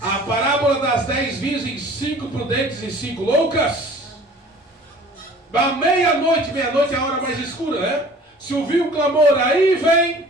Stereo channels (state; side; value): normal; both; correlation 0.48